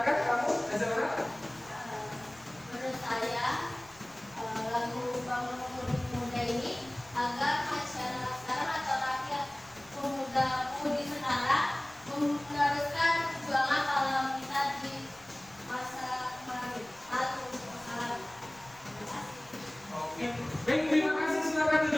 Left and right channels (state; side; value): noise; left; rumble, 26 dB below the sound